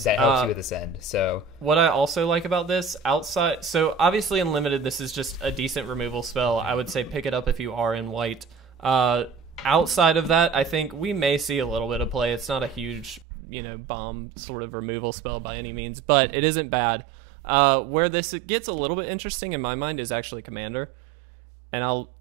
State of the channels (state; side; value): drops out; left; at 13.2 s